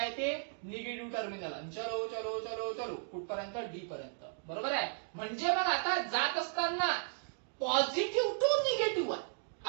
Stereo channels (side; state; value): left; silent; digital silence